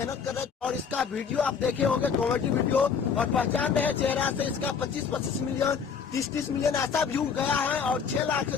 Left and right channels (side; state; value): right; quieter; 6.4 dB